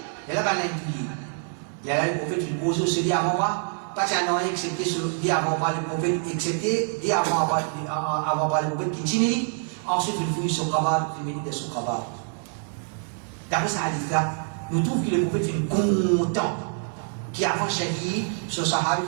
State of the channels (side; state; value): left; silent; 61 dB below the other